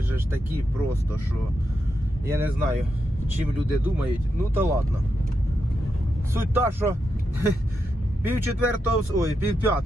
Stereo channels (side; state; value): both; normal; correlation 0.85